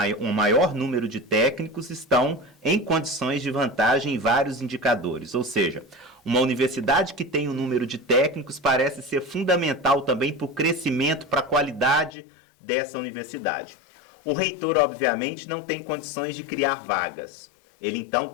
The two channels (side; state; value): right; drops out; at 12.1 s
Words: maior número de técnicos estão em condições de vantagem em vários indicadores. Ou seja, Uma universidade que tem um número de técnicos parece ser fundamental também para o crescimento, para a qualidade dessa universidade. O reitor, obviamente, não tem condições de criar vagas. Ele, então,